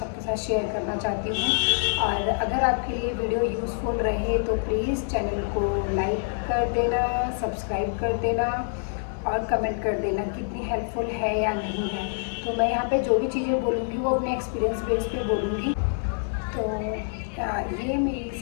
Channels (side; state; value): right; silent; 59 dB below the other